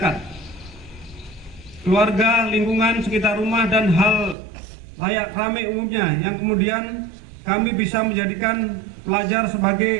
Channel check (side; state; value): left; drops out; at 4.4 s